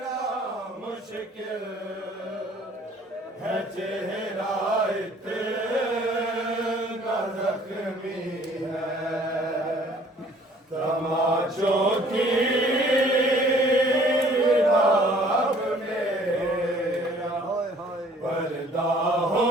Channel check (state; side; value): normal; both; correlation 0.56